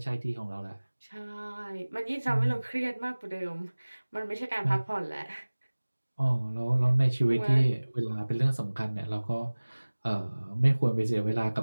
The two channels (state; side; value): inverted; both; correlation -1.00